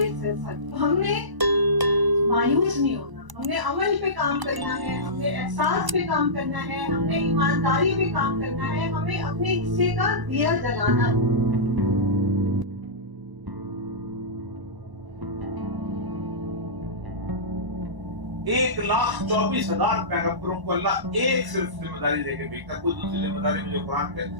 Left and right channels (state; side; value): late; left; 1.0 ms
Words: ہے۔ ہم نے مایوس نہیں ہونا، ہم نے عمل پہ کام کرنا ہے، ہم نے احساس پہ کام کرنا ہے، ہم نے ایمانداری پہ کام کرنا ہے، ہمیں اپنے حصے کا دیا جلانا ہے۔ 1,24,000 پیغمبروں کو اللہ ایک صرف ذمہ داری دے کے بھیجتا ہے، کوئی دوسری ذمہ داری مجھے قرآن کے